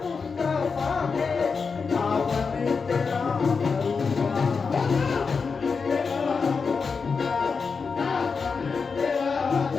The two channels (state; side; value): quieter; right; 5.1 dB